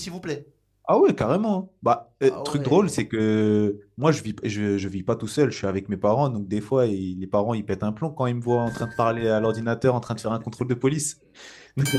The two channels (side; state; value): both; identical; correlation 1.00